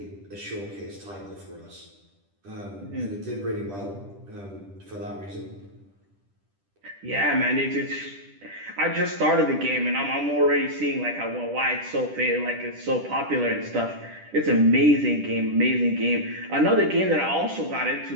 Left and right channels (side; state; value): left; late; 10 ms